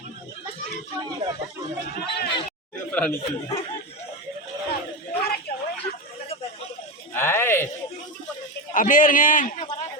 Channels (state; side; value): normal; both; correlation 0.16